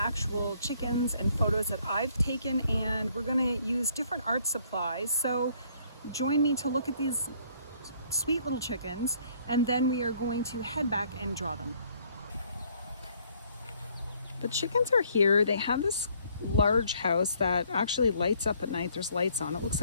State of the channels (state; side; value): inverted; both; correlation -0.64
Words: chickens and photos that I've taken, and we're gonna use different art supplies. So join me to look at these sweet little chickens, and then we are going to head back and draw them. The chickens are here. They have this large house that actually lights up at night. There's lights on. It looks